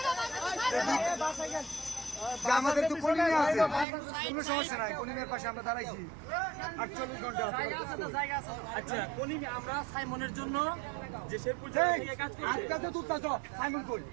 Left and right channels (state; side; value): drops out; left; at 3.9 s